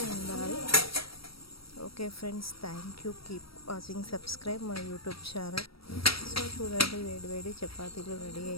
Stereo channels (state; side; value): late; right; 0.75 ms